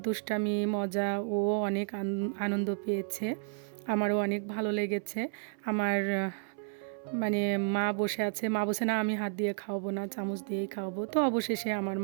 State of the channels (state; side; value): silent; left; 57 dB below the other